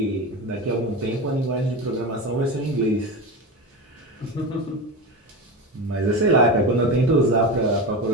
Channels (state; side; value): normal; both; correlation 0.23